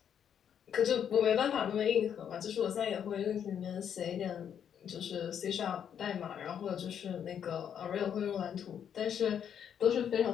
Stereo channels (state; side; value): quieter; right; 8.6 dB